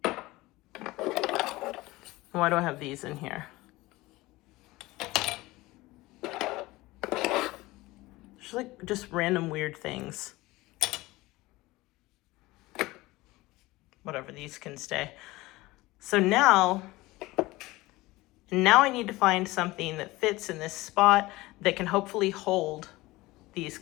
Why do I have these in here? Just random weird things. Whatever, these can stay. So now I need to find something that fits in this spot that can hopefully hold these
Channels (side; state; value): right; quieter; 19.9 dB